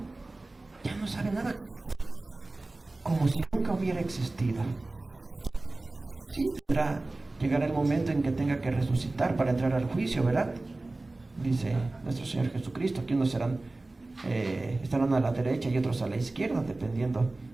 ya no sabe nada. Nunca hubiera existido. Llegará el momento en que tenga que resucitar para entrar al juicio, ¿verdad? Dice nuestro Señor Jesucristo, que unos estarán a la derecha y otros a la izquierda, dependiendo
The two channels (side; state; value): left; quieter; 3.0 dB